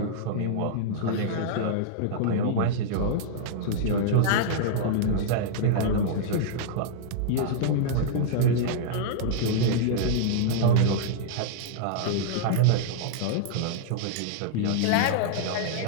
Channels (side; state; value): both; different; correlation -0.02